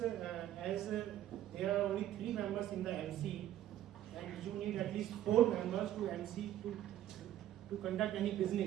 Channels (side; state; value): left; quieter; 12.4 dB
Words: there are only 3 members in the MC, and you need at least 4 members to MC to conduct any